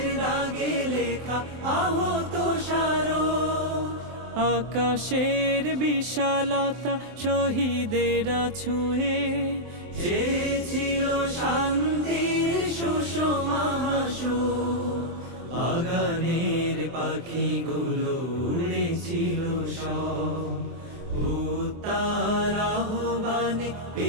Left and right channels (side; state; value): left; late; 23 ms